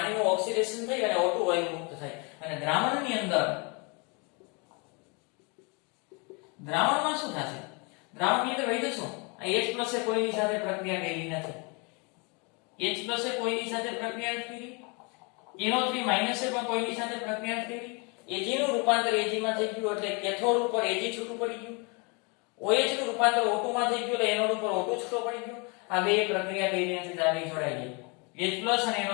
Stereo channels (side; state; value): right; quieter; 31.6 dB